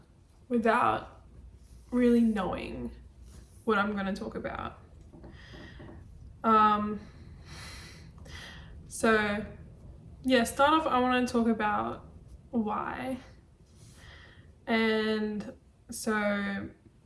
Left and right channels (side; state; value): both; identical; correlation 1.00